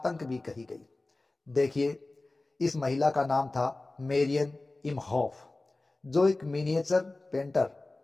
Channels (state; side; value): quieter; right; 3.0 dB